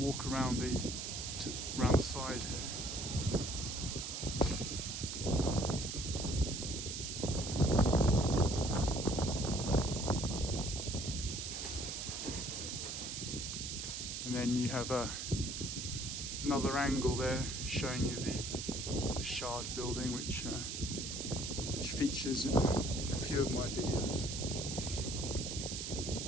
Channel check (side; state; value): right; noise; hiss, 5 dB below the sound